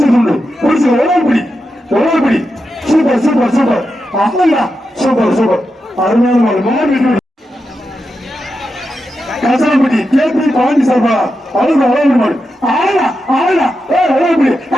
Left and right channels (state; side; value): normal; both; correlation 0.88